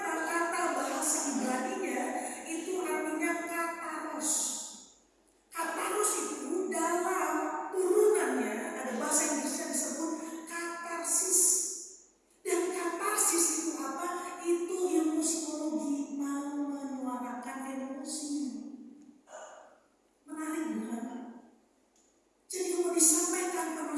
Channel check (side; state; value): both; identical; correlation 1.00